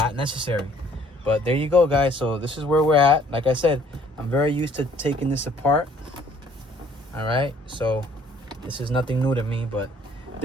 necessary. But there you go, guys. So this is where we're at. Like I said, I'm very used to taking this apart. All right, so this is nothing new to me, but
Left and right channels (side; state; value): both; normal; correlation 0.60